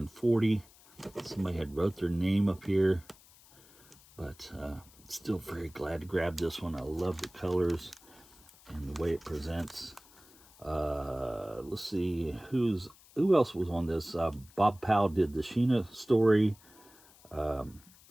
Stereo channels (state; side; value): noise; left; hiss, 25 dB below the sound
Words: 40. Somebody had wrote their name up here, but still very glad to grab this one. I love the colors and the way it presents. Let's see who else was on this. Bob Powell did the Sheena story.